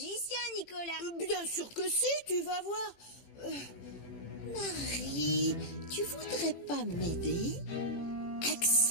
Nicolas. Bien sûr que si, tu vas voir. Marie, tu voudrais pas m'aider?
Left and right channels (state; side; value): late; right; 18 ms